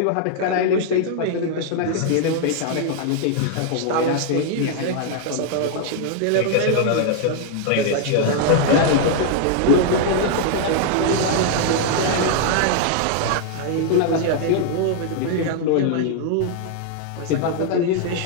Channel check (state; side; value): different; both; correlation 0.00